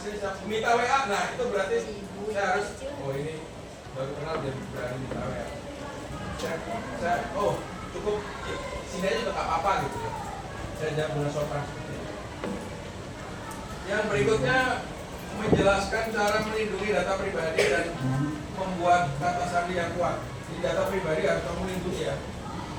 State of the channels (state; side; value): identical; both; correlation 1.00